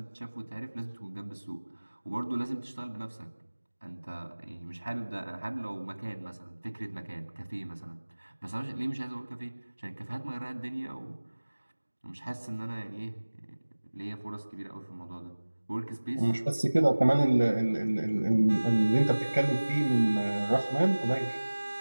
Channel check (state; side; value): inverted; both; correlation -1.00